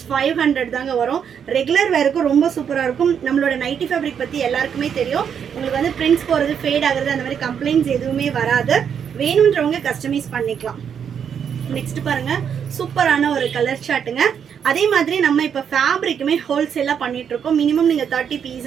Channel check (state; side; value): quieter; left; 7.8 dB